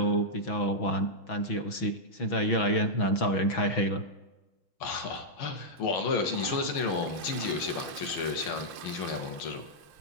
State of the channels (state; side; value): late; right; 5.7 ms